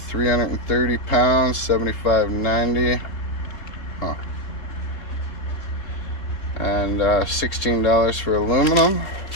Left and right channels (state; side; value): late; right; 3.7 ms